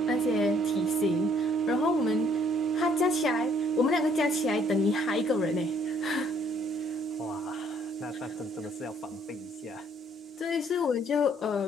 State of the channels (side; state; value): both; normal; correlation 0.64